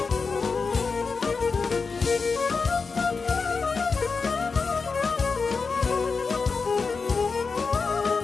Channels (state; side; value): quieter; right; 4.7 dB